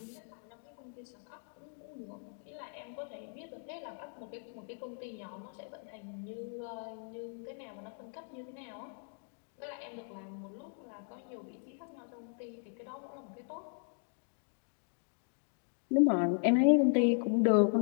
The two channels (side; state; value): right; silent; 53 dB below the other